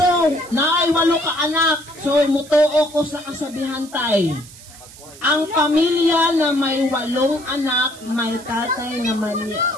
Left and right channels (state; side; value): noise; right; hiss, 19 dB below the sound